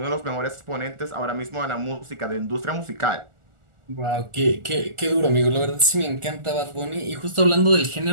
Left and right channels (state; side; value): late; left; 1.4 ms